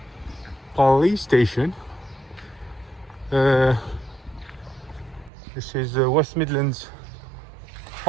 police station. This is West Midlands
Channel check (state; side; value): drops out; left; at 5.3 s